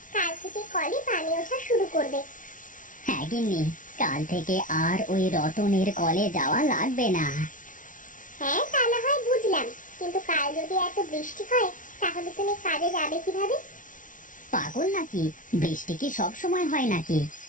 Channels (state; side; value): late; right; 0.38 ms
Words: কাল থেকে কলে পানি ওঠা শুরু করবে। হ্যাঁ গিন্নি, কাল থেকে আর ওই রতনের কলে যাওয়া লাগবে না। হ্যাঁ, তা না হয় বুঝলাম, কিন্তু কাল যদি এত বৃষ্টি হয়, তাহলে তুমি কাজে যাবে কিভাবে? পাগল নাকি? বৃষ্টি কি সব সময় হয় নাকি?